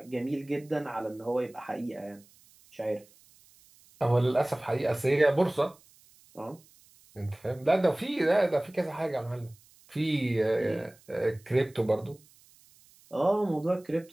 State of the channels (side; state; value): right; noise; hiss, 28 dB below the sound